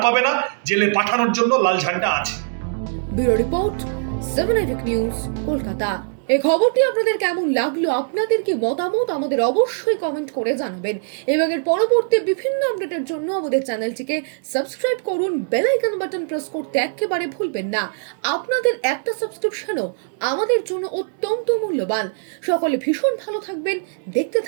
পাবে না, জেলে পাঠানোর জন্য লাল ঝান্ডা আছে। ব্যুরো রিপোর্ট, 7 এফেক নিউজ, কলকাতা। এই খবরটি আপনাদের কেমন লাগলো, আপনাদের কি মতামত আমাদের অবশ্যই কমেন্ট করে জানাবেন, এবং এর পরবর্তী বিভিন্ন আপডেটের জন্য আমাদের চ্যানেলটিকে সাবস্ক্রাইব করুন। বেল আইকন বাটন প্রেস করতে একেবারে ভুলবেন না। আপনাদের একটা সাবস্ক্রিপশনও আমাদের জন্য অত্যন্ত মূল্যবান। সকলে ভীষণ ভালো থাকবেন, দেখতে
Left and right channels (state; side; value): silent; left; 65 dB below the other